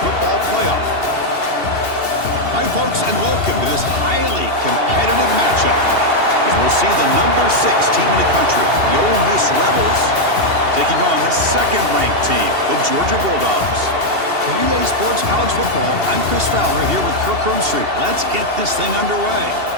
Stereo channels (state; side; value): late; left; 2.7 ms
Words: playoff. Hi, folks, and welcome to this highly competitive matchup, as we'll see the number 6 team in the country, the Ole Miss Rebels, taking on the second-ranked team, the Georgia Bulldogs. For EA Sports College Football, I'm Chris Fowler here with Kirk Hermstreet. Let's get this thing underway.